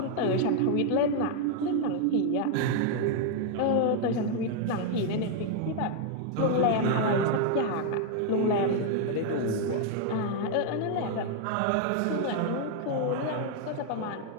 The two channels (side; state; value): both; different; correlation 0.00